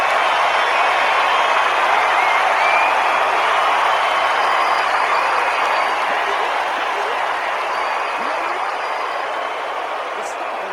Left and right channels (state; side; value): identical; both; correlation 1.00